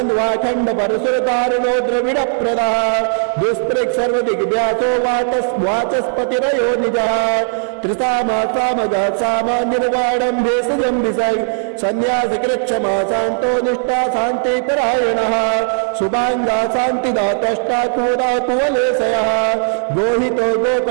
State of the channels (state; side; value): silent; left; 68 dB below the other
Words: परशुरतारुणो द्रविडप्रदः दुष्पृक् सर्वदिग्व्यासो वाचस्पतिरयो निजः त्रिसामा सामगः सामा निर्वाणं भेषजं विसर्ग सन्न्यासकृच्छमा शान्तो निष्ठा शान्तिपरायणः शुभाङ्गा शान्तिदातष्टा कुवदा कुवलेशयः गोहितो